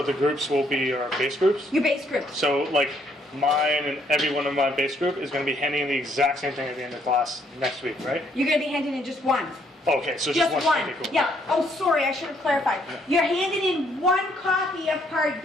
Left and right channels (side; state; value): both; normal; correlation 0.69